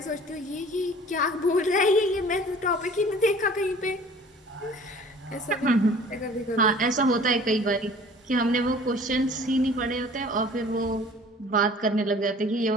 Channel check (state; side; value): normal; both; correlation 0.48